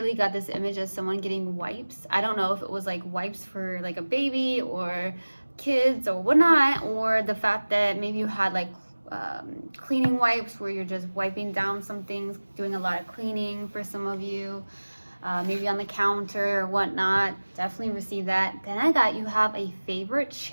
got this image of someone getting wipes. I don't know if it was like wipes for like a baby or kids or whatnot, or the fact that maybe you had like cleaning wipes where you're just wiping down some things, doing a lot of cleaning for some of you, maybe on the counter or whatnot. Definitely receive that. Then I got you have a favorite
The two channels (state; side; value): inverted; both; correlation -1.00